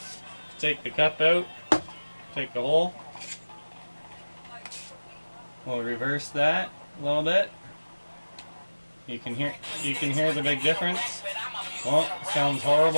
Take the cup out. Take the hole. We'll reverse that a little bit. You can hear the big difference. Well, it sounds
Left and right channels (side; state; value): both; inverted; correlation -1.00